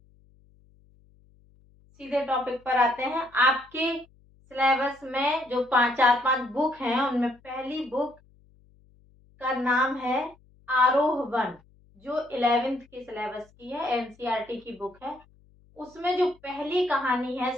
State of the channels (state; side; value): noise; left; hum, 30 dB below the sound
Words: सीधे टॉपिक पर आते हैं। आपके सिलेबस में जो चार पांच बुक हैं उनमें पहली बुक का नाम है आरोह वन, जो 11th के सिलेबस की है, NCERT की बुक है। उसमें जो पहली कहानी है